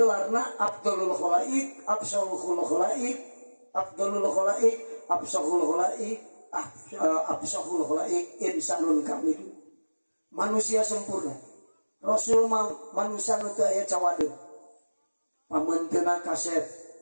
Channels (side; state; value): both; inverted; correlation -1.00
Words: Abdulul Khalaik, Absalul Khalaik, Abdulul Khalaik, Absalul Khalaik, Absalul Khalaik, insanun kamil. Manusia sempurna. Rasul manusia nu teu aya cawadeung. Pamenteuna kasep,